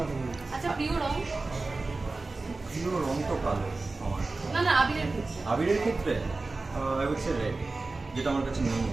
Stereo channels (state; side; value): quieter; left; 3.5 dB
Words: আচ্ছা, প্রিয় রং? প্রিয় রং তো কালো আমার। না না, আবিরের ক্ষেত্রে। আবিরের ক্ষেত্রে আই উড সে রেড, যেটা আমার কাছে নেই।